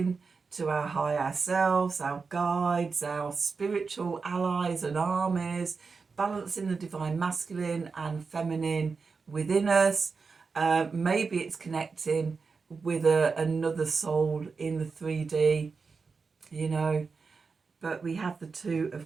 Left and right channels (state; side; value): quieter; left; 4.8 dB